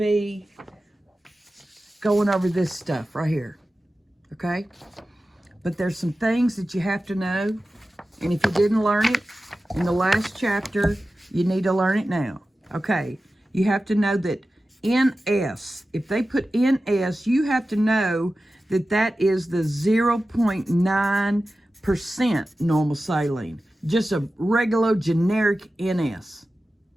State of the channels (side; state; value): both; normal; correlation 0.94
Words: going over this stuff right here. Okay? But there's some things that you have to know. And if you didn't learn it in the last chapter, you need to learn it now. Okay? You have to know that NS, if they put NS, you have to know that that is the 0.9% normal saline. Just a regular generic NS.